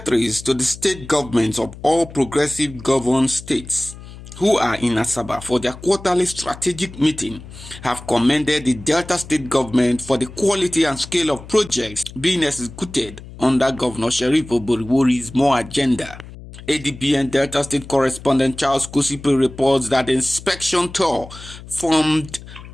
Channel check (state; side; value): noise; left; hum, 16 dB below the sound